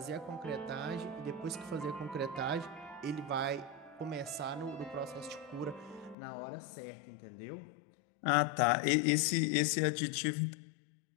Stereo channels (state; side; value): drops out; right; at 6.2 s